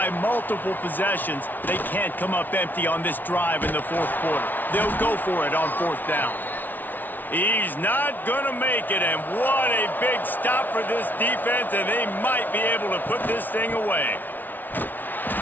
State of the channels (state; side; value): late; right; 0.085 ms